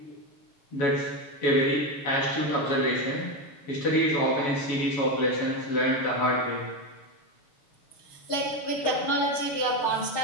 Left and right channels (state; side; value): late; right; 6.5 ms